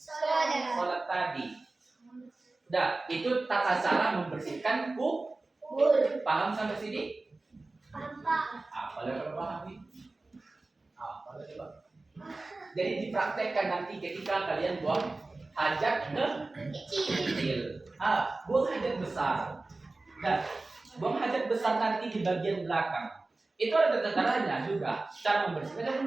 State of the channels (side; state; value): left; quieter; 3.2 dB